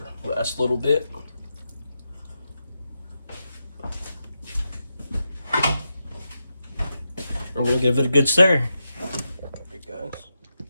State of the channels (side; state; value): both; inverted; correlation -0.87